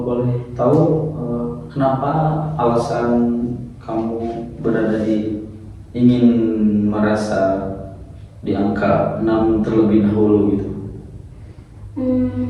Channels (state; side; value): identical; both; correlation 1.00